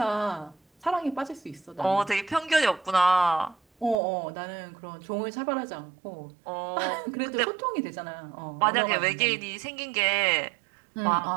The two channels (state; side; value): drops out; left; at 4.0 s